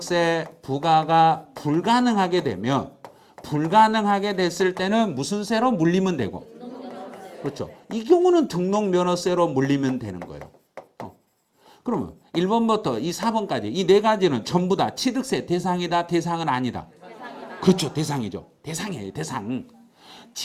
부과가 불가능하게 되면 불가능하게 됐을 때는 무슨 세로 물리면 되고 그렇죠. 이 경우는 등록면허세로 물리면 되는 거예요. 그러면 1번부터 이 4번까지 이 네 가지는 전부 다 취득세 대상이다 대상은 아니다. 그렇죠. 대상이죠. 대상이에요. 대상.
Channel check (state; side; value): identical; both; correlation 1.00